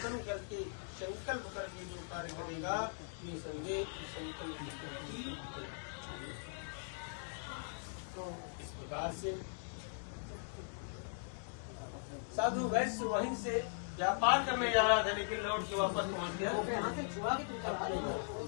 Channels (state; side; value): silent; right; 51 dB below the other